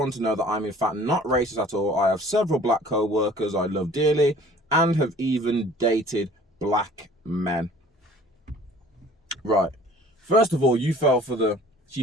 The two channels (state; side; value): normal; both; correlation 0.50